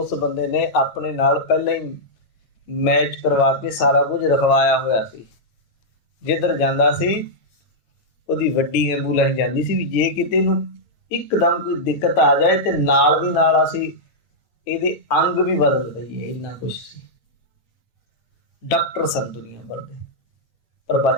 ਬੰਦੇ ਨੇ ਆਪਣੇ ਨਾਲ ਪਹਿਲਾਂ ਹੀ ਮੈਚ ਕਰਵਾ ਕੇ ਸਾਰਾ ਕੁਝ ਰਖਵਾਇਆ ਹੋਇਆ ਸੀ। ਜਿੱਧਰ ਜਾਂਦਾ ਸੀ ਉਹਦੀ ਵੱਡੀ ਐਂਬੂਲੈਂਸ ਜਾਂਦੀ ਸੀ, ਵੀ ਜੇ ਕਿਤੇ ਨੂੰ ਇੱਕਦਮ ਕੋਈ ਦਿੱਕਤ ਆ ਜਾਏ ਤੇ ਨਾਲ ਦੀ ਨਾਲ ਅਸੀਂ ਇਹਦੇ ਅੰਗ ਵੀ ਬਦਲ ਦਈਏ, ਇੰਨਾ ਕੁਛ ਸੀ। ਡਾਕਟਰ ਸਨ ਦੁਨੀਆ ਭਰ ਦੇ, ਪਰ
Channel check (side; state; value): right; late; 9.2 ms